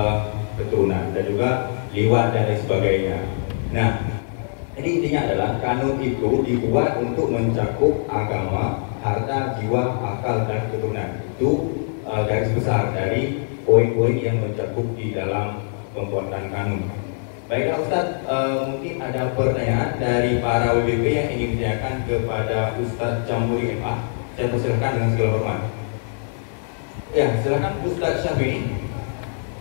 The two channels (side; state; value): right; silent; digital silence